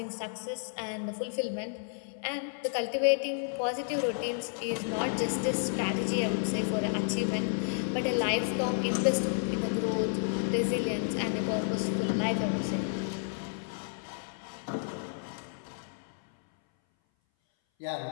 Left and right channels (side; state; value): right; silent; 57 dB below the other